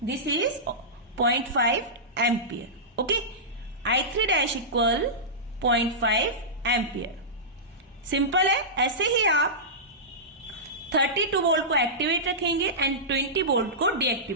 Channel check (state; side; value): normal; both; correlation -0.16